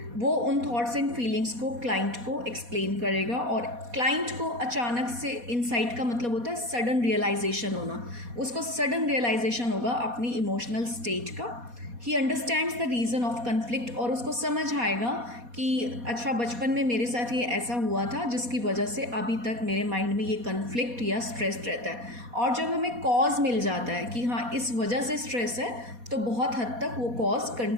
वो उन थॉट्स एंड फीलिंग्स को क्लाइंट को एक्सप्लेन करेगा और क्लाइंट को अचानक से इंसाइट का मतलब होता है सडन रियलाइजेशन होना, उसको सडन रियलाइजेशन होगा अपनी इमोशनल स्टेट का। He understands the reason of conflict, और उसको समझ आएगा कि अच्छा बचपन में मेरे साथ ये ऐसा हुआ था जिसकी वजह से अभी तक मेरे माइंड में ये कन्फ्लिक्ट या स्ट्रेस रहता है। और जब हमें कॉज मिल जाता है कि हाँ इस वजह से स्ट्रेस है, तो बहुत हद तक वो कॉज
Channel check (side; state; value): left; late; 4.2 ms